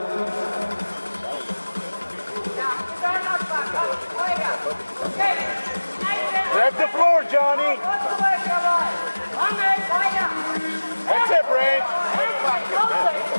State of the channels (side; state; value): both; inverted; correlation -1.00